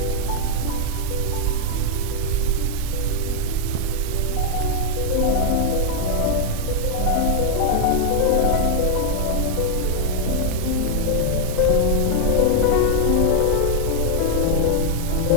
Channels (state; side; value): normal; both; correlation -0.01